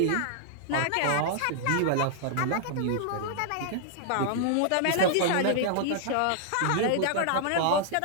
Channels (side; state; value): both; different; correlation -0.01